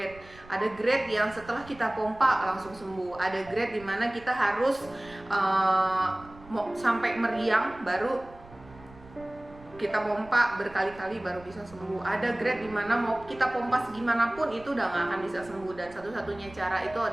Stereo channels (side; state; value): right; noise; rumble, 21 dB below the sound